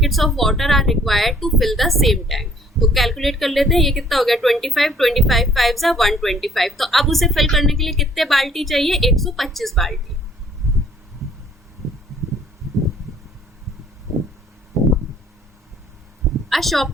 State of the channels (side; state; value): both; normal; correlation 0.59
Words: of water are required to fill the same tank. तो कैलकुलेट कर लेते हैं, ये कितना हो गया? 25 5 125। तो अब उसे फिल करने के लिए कितने बाल्टी चाहिए? 125 बाल्टी। A